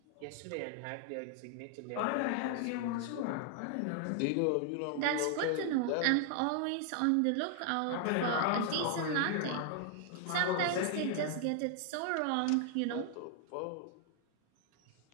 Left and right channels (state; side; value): different; both; correlation 0.00